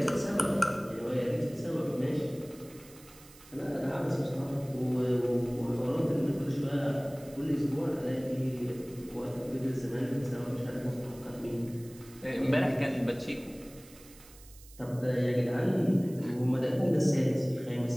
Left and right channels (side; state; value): right; noise; hiss, 22 dB below the sound